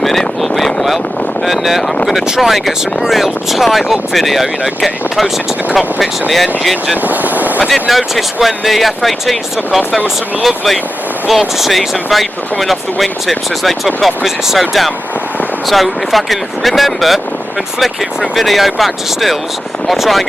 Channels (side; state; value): both; normal; correlation 0.92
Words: all being well. And I'm going to try and get some real tight up video, you know, getting close into the cockpits and the engines. And I did notice when the F-18s took off, there was some lovely vortices and vapour coming off the wingtips as they took off because it's so damp. So if I can remember and flick it from video back to stills, I'll try and